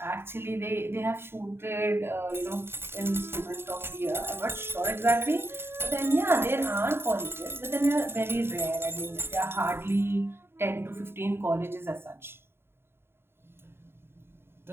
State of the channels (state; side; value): late; left; 0.11 ms